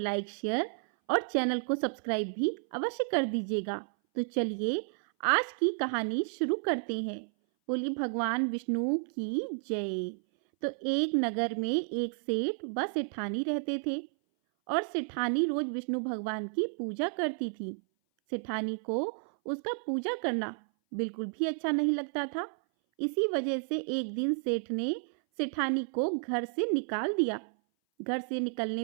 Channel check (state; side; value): silent; left; 57 dB below the other